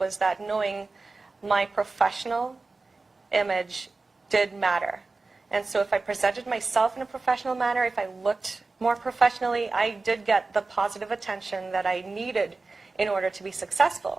that knowing my professional image did matter. And so if I presented myself in a professional manner, if I looked more professionally, I did get the positive attention that I needed in order to be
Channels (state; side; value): quieter; left; 3.7 dB